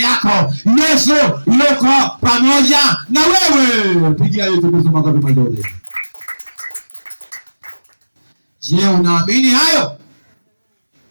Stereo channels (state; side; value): inverted; both; correlation -1.00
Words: yako. Yesu yuko pamoja na wewe. Pigia Yesu Kristo makofi mazuri. Je, unaamini hayo?